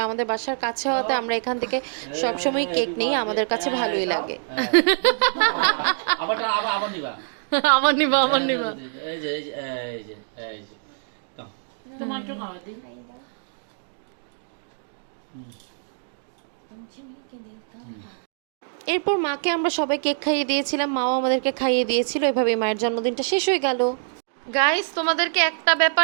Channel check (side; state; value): left; silent; digital silence